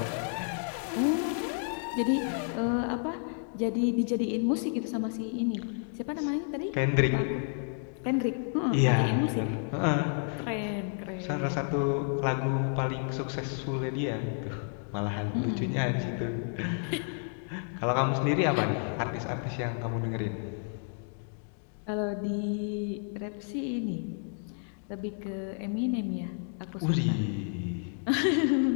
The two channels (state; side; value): silent; right; 56 dB below the other